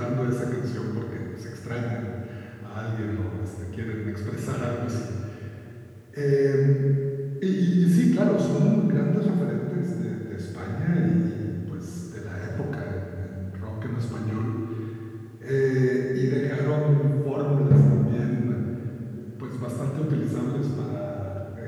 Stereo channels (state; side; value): identical; both; correlation 1.00